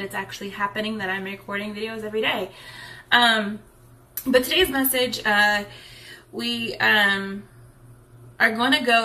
it's actually happening, that I'm recording videos every day. But today's message, we are going to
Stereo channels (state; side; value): identical; both; correlation 1.00